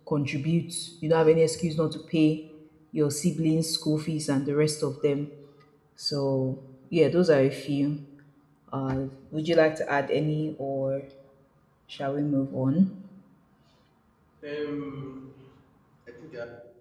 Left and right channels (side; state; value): both; identical; correlation 1.00